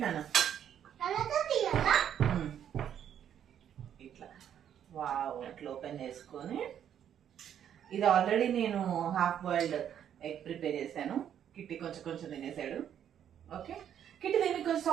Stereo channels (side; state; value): left; quieter; 9.5 dB